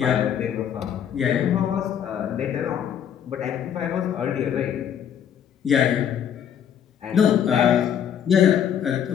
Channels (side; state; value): right; quieter; 8.9 dB